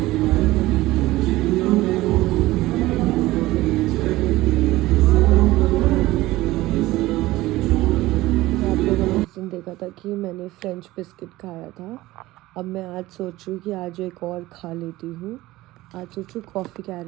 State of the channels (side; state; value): left; quieter; 17.7 dB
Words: आप लोगों ने उस दिन देखा था कि मैंने फ्रेंच बिस्किट खाया था। अब मैं आज सोच रही हूँ कि आज एक और खा लेती हूँ। आज सोच रही हूँ कॉफ़ी